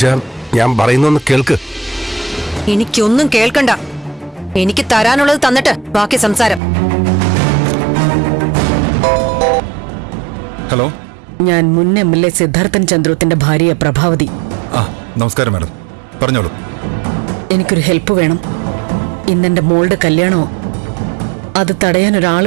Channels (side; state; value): left; drops out; at 6.6 s